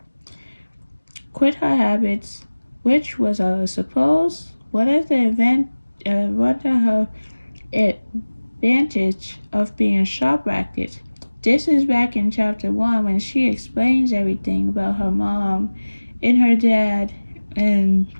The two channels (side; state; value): both; inverted; correlation -1.00